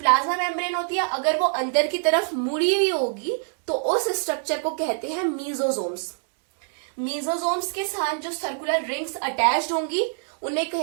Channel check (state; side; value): silent; left; 62 dB below the other